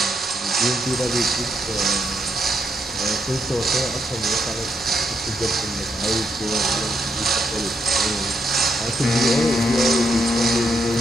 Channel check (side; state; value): both; normal; correlation 0.78